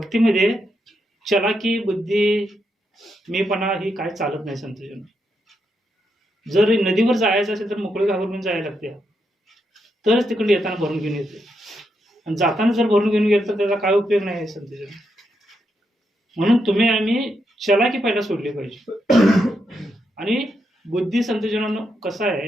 चलाकी, बुद्धी, मीपणा ही काय चालत नाही संतजन. जर नदीवर जायचं असेल तर मोकळे घाबरून जायला लागते, तरच तिकडे येताना भरून घेऊन येते. आणि जाताना जर भरून घेऊन गेलं तर त्याचा काय उपयोग नाही आहे संतजन. म्हणून तुम्ही आम्ही चलाकी पहिला सोडली पाहिजे. आणि बुद्धी संतजनांनो कसं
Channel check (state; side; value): normal; both; correlation 0.82